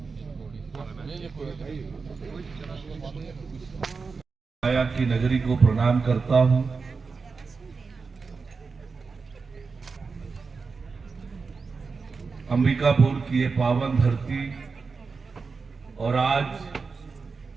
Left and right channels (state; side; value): quieter; left; 4.7 dB